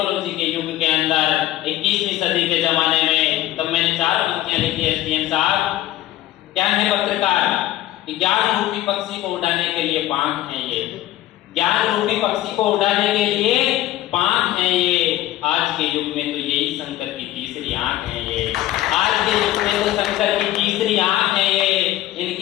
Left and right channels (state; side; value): quieter; right; 14.2 dB